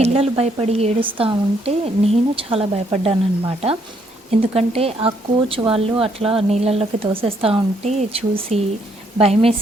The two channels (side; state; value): both; normal; correlation 0.71